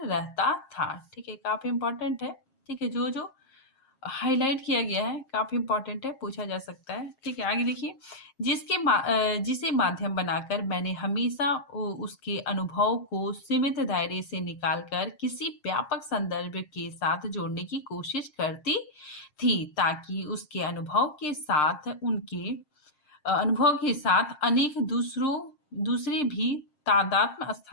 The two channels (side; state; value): right; late; 7.5 ms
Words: रहता था। ठीक है, काफी इंपॉर्टेंट है। ठीक है, जो जो हाईलाइट किया गया है काफी इंपॉर्टेंट है, पूछा जा सकता है। ठीक है, आगे देखिए, जिसे माध्यम बनाकर मैंने हमेशा उसके अनुभव को सीमित दायरे से निकालकर किसी व्यापक संदर्भ के साथ जोड़ने की कोशिश करती थी, ताकि उसके अनुभव के साथ अनेक दूसरे भी तादात्म्य